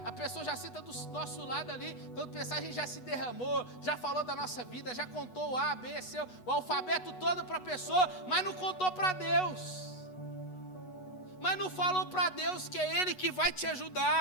A pessoa já senta do nosso lado ali. Quando pensar, a gente já se derramou, já falou da nossa vida, já contou o A, B, C, o alfabeto todo para a pessoa, mas não contou para Deus. Mas não falou para Deus que é Ele que vai te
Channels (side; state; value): right; late; 8.1 ms